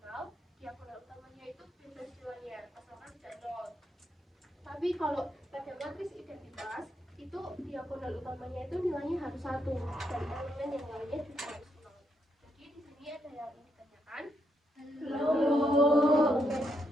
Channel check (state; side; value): normal; both; correlation 0.79